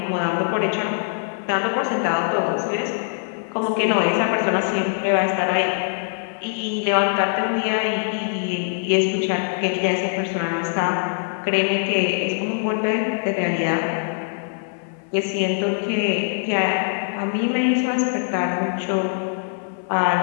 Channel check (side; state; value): right; silent; 56 dB below the other